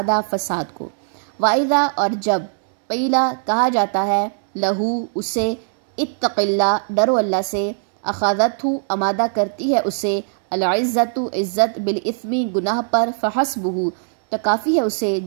فساد کو۔ وَإِذَا، اور جب، قیلا، کہا جاتا ہے، لہو، اسے، اتق اللہ، ڈرو اللہ سے، اخذتہ، آمادہ کرتی ہے اسے، العزت، عزت، بالاثم، گناہ پر، فحسبہ، تو کافی ہے اسے،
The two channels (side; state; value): left; silent; digital silence